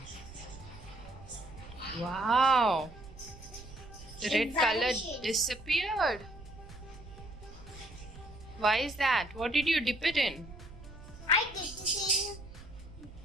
Wow. The It red color vanishes. disappeared. Why is that? What did you dip it in? I dipped it in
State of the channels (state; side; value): noise; right; rumble, 16 dB below the sound